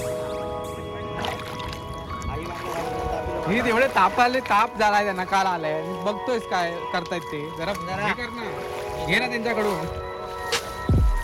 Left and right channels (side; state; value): both; identical; correlation 1.00